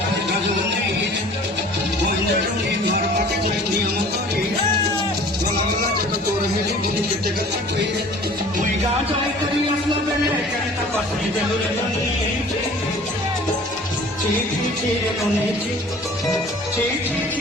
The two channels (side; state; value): both; normal; correlation 0.47